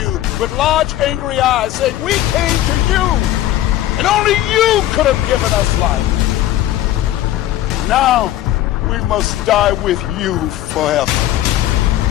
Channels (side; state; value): right; quieter; 13.7 dB